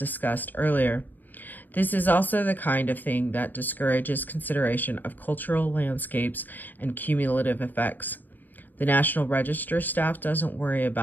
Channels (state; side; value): late; right; 0.088 ms